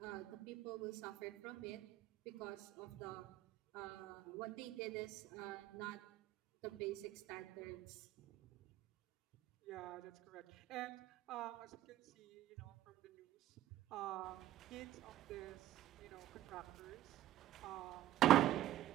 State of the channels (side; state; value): left; quieter; 13.7 dB